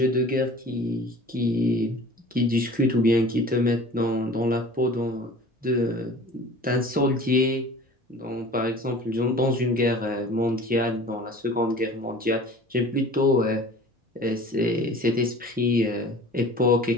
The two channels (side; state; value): both; normal; correlation 0.44